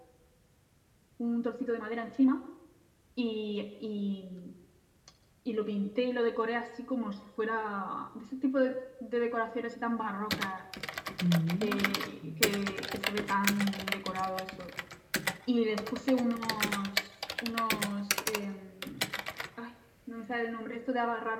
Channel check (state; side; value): identical; both; correlation 1.00